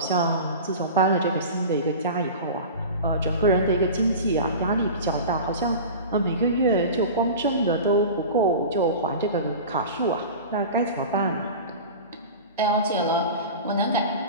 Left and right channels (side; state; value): both; inverted; correlation -0.33